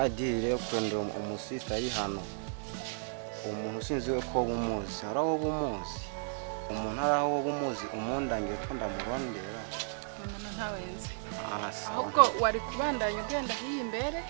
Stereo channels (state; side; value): silent; left; digital silence